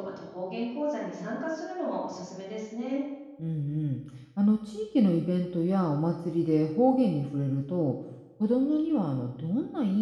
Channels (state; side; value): identical; both; correlation 1.00